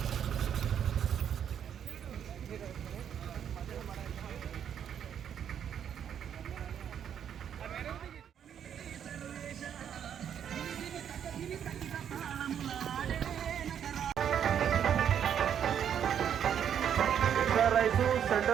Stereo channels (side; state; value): left; quieter; 8.8 dB